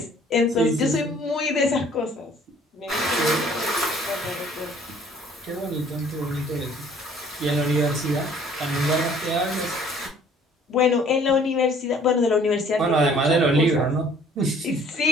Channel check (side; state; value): both; normal; correlation 0.56